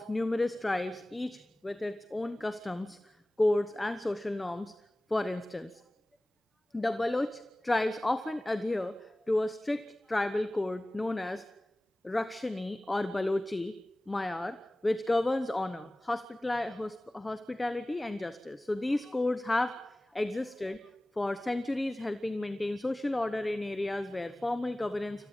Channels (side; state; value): both; normal; correlation 0.98